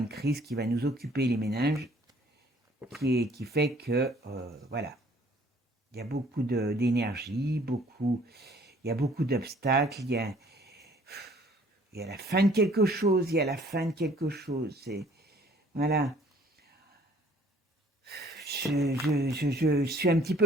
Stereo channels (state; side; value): normal; both; correlation 0.57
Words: crise qui va nous occuper les méninges, qui fait que, voilà, il y a beaucoup d'énergie, il y a beaucoup d'obstacles, il y a la fin de quelque chose, il y a la fin de quelque chose. Voilà. Je suis un petit